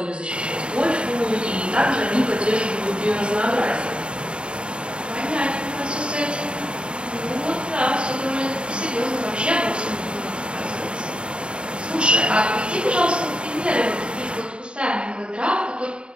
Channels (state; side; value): late; left; 0.054 ms